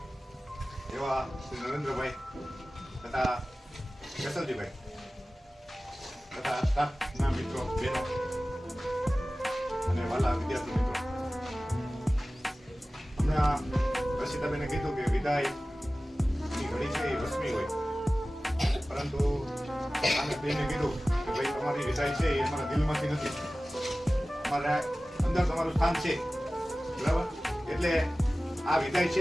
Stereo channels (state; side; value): normal; both; correlation 0.96